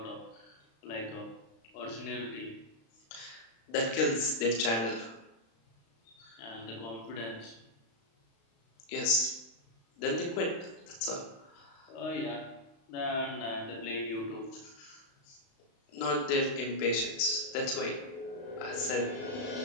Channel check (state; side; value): late; right; 35 ms